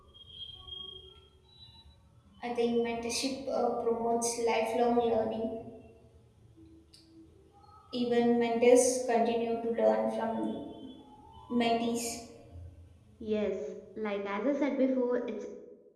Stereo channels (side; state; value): both; identical; correlation 1.00